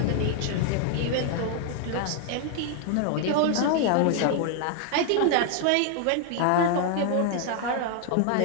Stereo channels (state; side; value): different; both; correlation 0.00